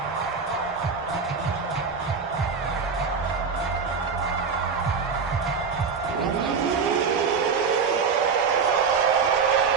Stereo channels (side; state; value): left; quieter; 5.5 dB